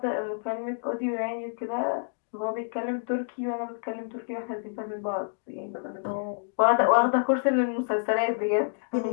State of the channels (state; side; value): silent; right; digital silence